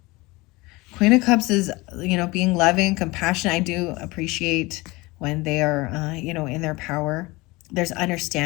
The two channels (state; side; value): quieter; right; 22.7 dB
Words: Queen of Cups is, being loving, compassionate. I do appreciate when they are, in their power. There's